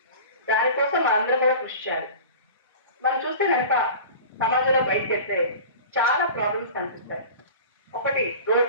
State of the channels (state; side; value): inverted; both; correlation -0.37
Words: దానికోసం అందరూ కూడా కృషి చేయాలి. మనం చూస్తే కనుక సమాజంలో బయటకు వెళ్తే చాలా ప్రాబ్లమ్స్ కనిపిస్తాయి. ఒకటి